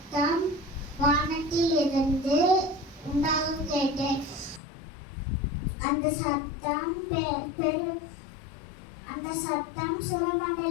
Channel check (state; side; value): drops out; right; at 4.6 s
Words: வானத்தில் இருந்து உண்டாக கேட்டேன். அந்த சத்தம்